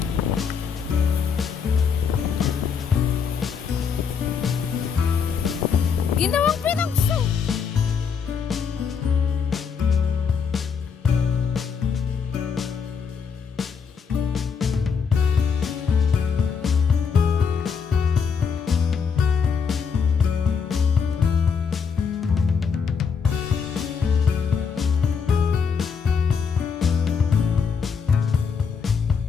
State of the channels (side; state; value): right; quieter; 6.2 dB